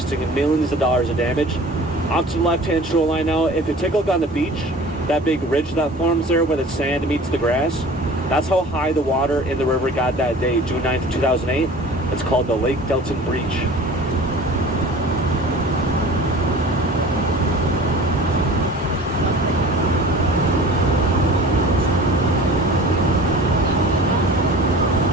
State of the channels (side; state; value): both; normal; correlation 0.42